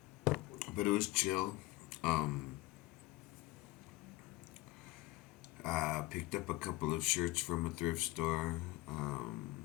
But it was chill. Um, Picked up a couple of shirts from a thrift store.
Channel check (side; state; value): right; quieter; 18.9 dB